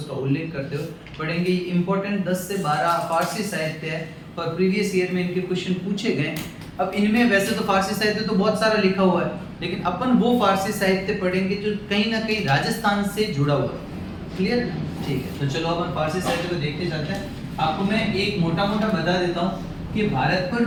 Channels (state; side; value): identical; both; correlation 1.00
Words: उल्लेख करते हो पढ़ेंगे। ये इम्पोर्टेंट 10 से 12 फारसी साहित्य है और प्रीवियस ईयर में इनके क्वेश्चन पूछे गए। अब इनमें वैसे तो फारसी साहित्य तो बहुत सारा लिखा हुआ है, लेकिन अपन वो फारसी साहित्य पढ़ेंगे जो कहीं ना कहीं राजस्थान से जुड़ा हुआ है। क्लियर? ठीक है, तो चलो अपन फारसी साहित्य को देखते जाते हैं। आपको मैं एक मोटा मोटा बता देता हूँ कि भारत पर